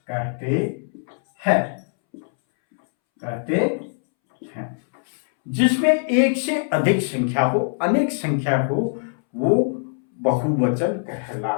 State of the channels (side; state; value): right; silent; 64 dB below the other